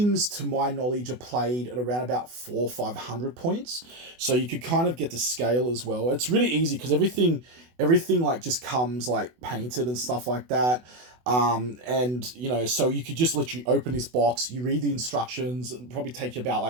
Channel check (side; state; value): left; late; 24 ms